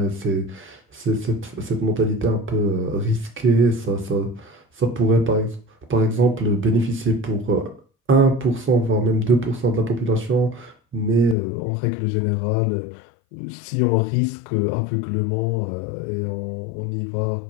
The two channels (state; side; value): drops out; right; at 11.4 s